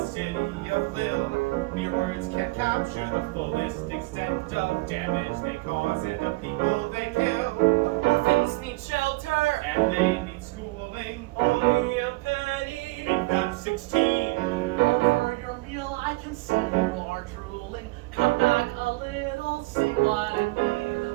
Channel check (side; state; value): left; quieter; 22.9 dB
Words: city of Lille. Mere words can't capture the fullest extent of damage they cause and the people they kill. The orphans need shelter, And they need schooling. only a penny. Make them 16. Over your meal, I can see you are drooling. Come back a little, see what I